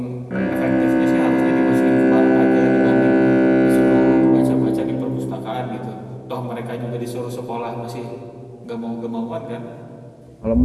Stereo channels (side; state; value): both; identical; correlation 1.00